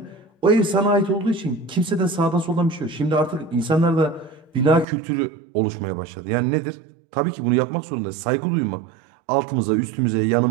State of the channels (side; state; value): left; drops out; at 4.9 s